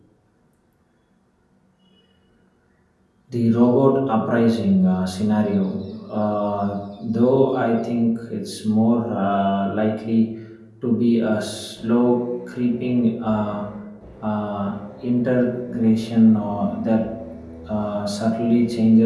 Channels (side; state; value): both; identical; correlation 1.00